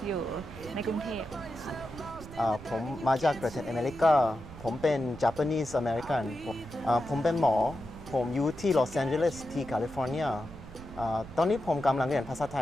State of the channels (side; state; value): right; noise; rumble, 15 dB below the sound